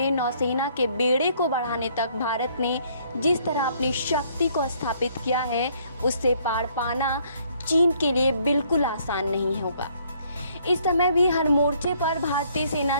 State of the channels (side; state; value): both; inverted; correlation -0.64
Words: नौसेना के बेड़े को बढ़ाने तक भारत ने जिस तरह अपनी शक्ति को स्थापित किया है, उससे पार पाना चीन के लिए बिल्कुल आसान नहीं होगा। इस समय भी हर मोर्चे पर भारतीय सेना